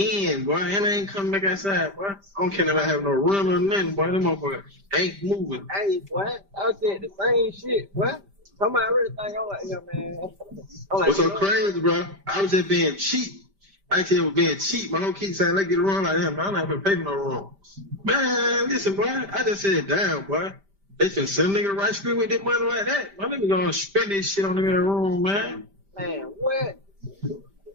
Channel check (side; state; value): left; late; 5.1 ms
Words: boy, and I ain't coming back outside, boy. I don't care if I have no run or nothing, boy. Them motherfuckers ain't moving. Hey, boy, I said the same shit, boy. Come on, I really think I'm like, yeah, man. What's so crazy, bro? I was just being cheap. Actually, I was being cheap. My whole keep saying, let's get a run like him, but I'm not gonna pay for no run. Man, listen, boy, I just said, damn, boy. They finna send a nigga to right street with their money like that. My nigga gonna spend this shit on them in the room, man. Man, what? boy.